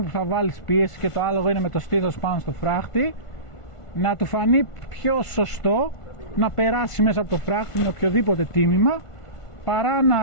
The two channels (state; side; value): late; right; 1.5 ms